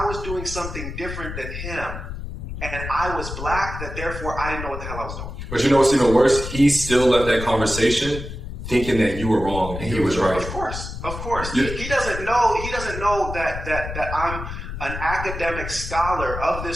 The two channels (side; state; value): left; noise; rumble, 8 dB below the sound